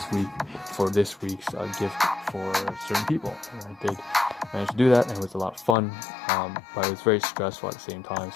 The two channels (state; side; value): drops out; right; at 5.8 s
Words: week for this week's gift for certain people. And I did manage to do that, and it was a lot of fun, but it was very stressful at the same time,